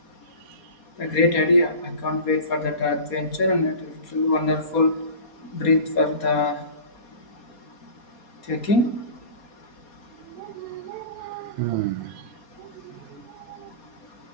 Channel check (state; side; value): late; right; 4.2 ms